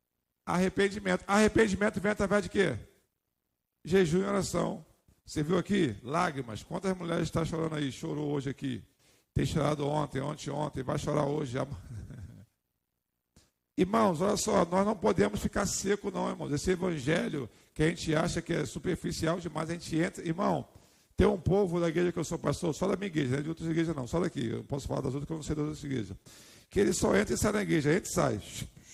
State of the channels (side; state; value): both; identical; correlation 1.00